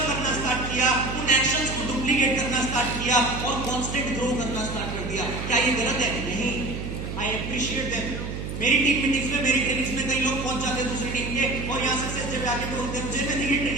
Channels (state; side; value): noise; right; hum, 6 dB below the sound